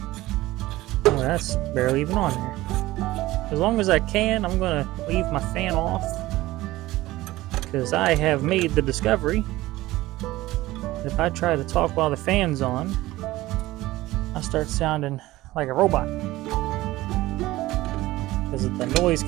Oh, that's barely even on there. As long as I can, I'm gonna leave my fan off. Because I have made the discovery that if I try to talk while the fan's on, I start sounding like a robot. Because of the noise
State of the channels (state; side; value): quieter; left; 17.6 dB